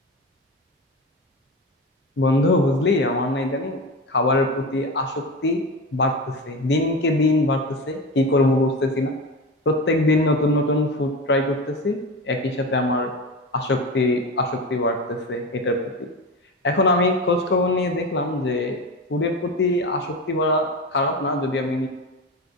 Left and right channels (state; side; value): normal; both; correlation 0.25